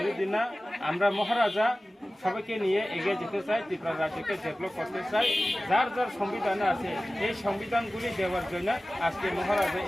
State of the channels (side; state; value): both; normal; correlation 0.96